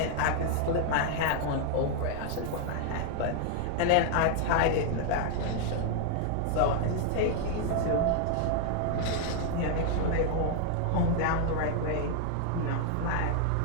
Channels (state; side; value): different; both; correlation 0.00